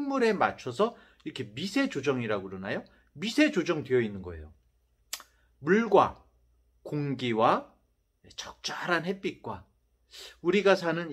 맞춰서 이렇게 미세 조정이라고 그러나요? 미세 조정되어 있는 거예요. 물과 공기와 적절한 햇빛과 우리가 사는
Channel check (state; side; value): identical; both; correlation 1.00